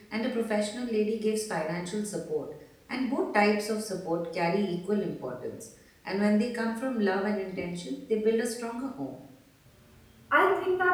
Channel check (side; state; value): both; identical; correlation 1.00